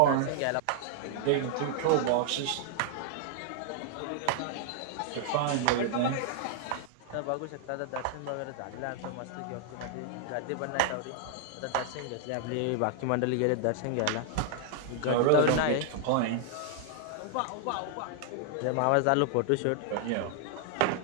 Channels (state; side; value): different; both; correlation -0.01